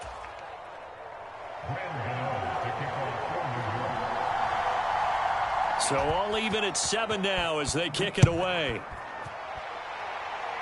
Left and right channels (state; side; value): identical; both; correlation 1.00